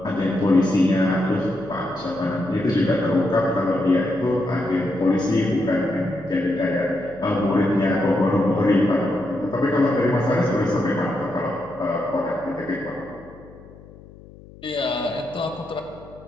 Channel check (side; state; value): left; noise; hum, 21 dB below the sound